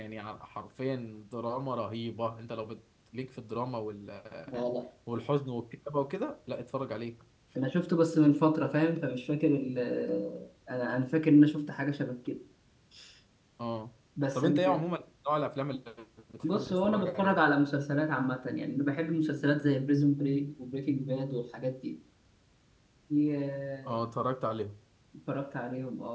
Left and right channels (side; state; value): both; identical; correlation 1.00